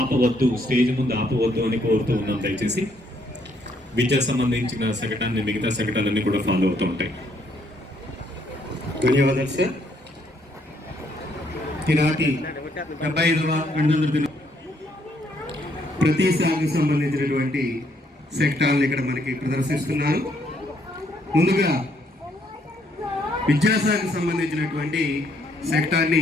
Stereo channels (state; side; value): normal; both; correlation 0.70